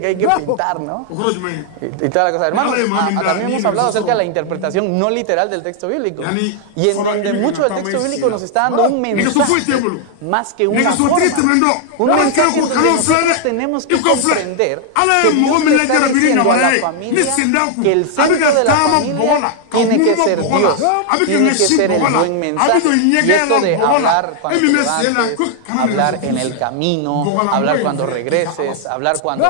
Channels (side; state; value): both; different; correlation 0.00